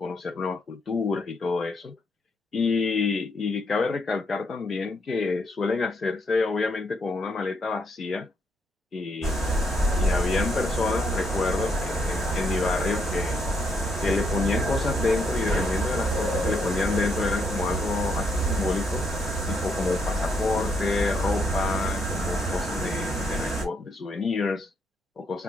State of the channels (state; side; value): normal; both; correlation 0.75